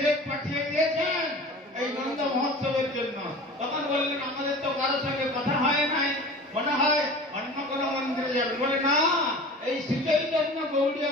পাঠিয়ে দিয়েছেন এই নন্দ মহোৎসবের জন্য। তখন বললেন আমাদের তো কারোর সঙ্গে কথা হয় নাই, মনে হয় অন্য কোনো মন্দিরে যাবে। বলে না, এই শ্রীচৈতন্য গৌড়ীয়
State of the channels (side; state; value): both; normal; correlation 0.39